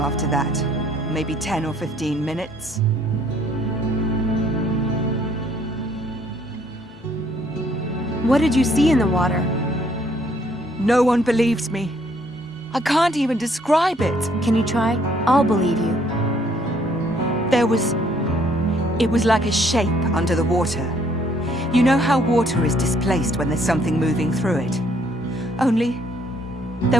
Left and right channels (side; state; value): both; normal; correlation 0.65